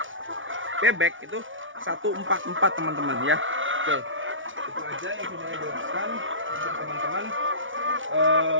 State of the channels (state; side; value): late; left; 0.57 ms